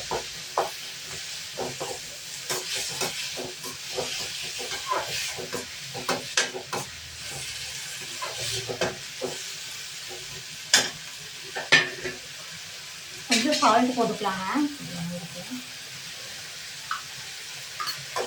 கொஞ்சம் சால்ட் போட்டுக்கலாங்க.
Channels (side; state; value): both; identical; correlation 1.00